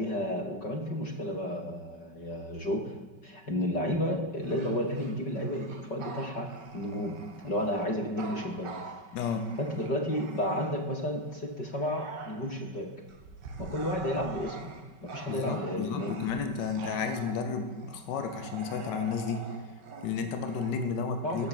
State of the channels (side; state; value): right; late; 5.3 ms